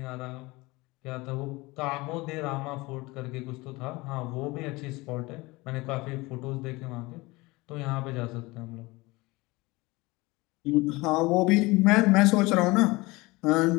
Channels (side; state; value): right; quieter; 22.6 dB